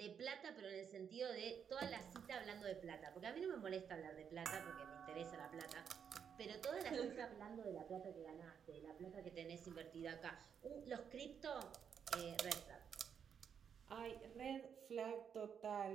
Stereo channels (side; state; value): left; quieter; 7.6 dB